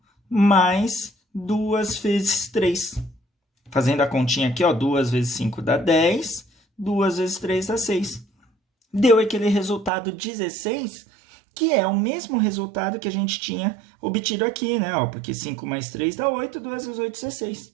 mais 2 vezes 3. Fazendo a continha aqui, ó, 2 vezes 5 dá 10, 2 vezes 3 dá 6. Deu aquele resultado 16, que é o mesmo resultado que a gente tinha obtido aqui, né? Ó, porque 5 mais 3 dá 8, 2 vezes 8, 16.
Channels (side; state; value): left; drops out; at 9.9 s